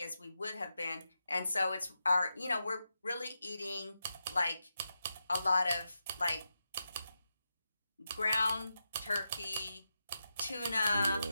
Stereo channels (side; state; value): both; inverted; correlation -0.88